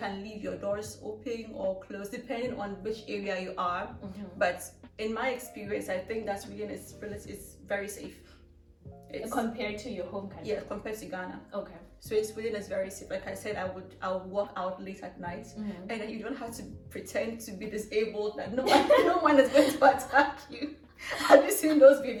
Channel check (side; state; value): both; identical; correlation 1.00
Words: leave your doors open or closed depending on which area you are. But in my experience, I think that Sweden is very safe. Compared to your home country? Yeah, compared to Ghana. Okay. So Sweden is very safe. Like I said, I would walk out late at night, and then you don't have to pretend to be disabled, that no one is going to attack you. Have you seen those